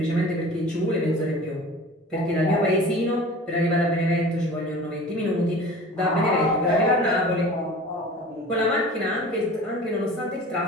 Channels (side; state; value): both; normal; correlation 0.41